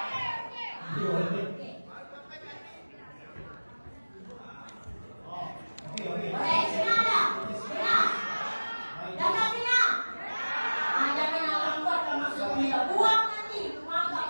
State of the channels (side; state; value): both; inverted; correlation -1.00